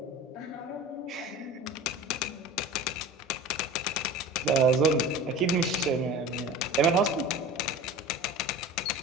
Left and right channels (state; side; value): normal; both; correlation 0.35